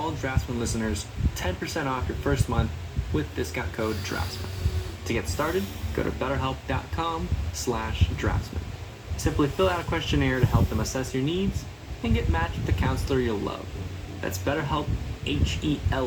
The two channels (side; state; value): both; identical; correlation 1.00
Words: Draftsman listeners 10% off your first month with discount code DRAFTSMAN. To get started, go to betterhelp.com/draftsman. Simply fill out a questionnaire to help them assess your needs and get matched with a counselor you'll love. That's BetterHelp,